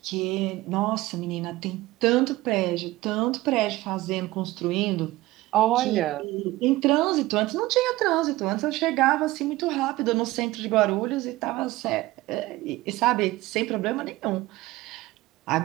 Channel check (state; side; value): quieter; left; 18.3 dB